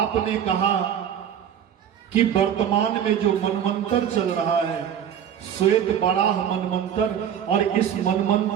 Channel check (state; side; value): quieter; left; 9.1 dB